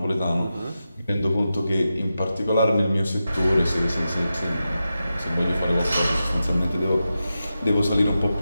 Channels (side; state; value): both; inverted; correlation -0.91